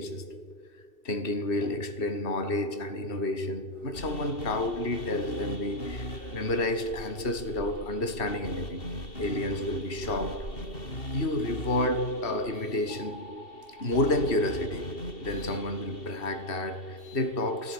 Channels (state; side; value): late; right; 2.7 ms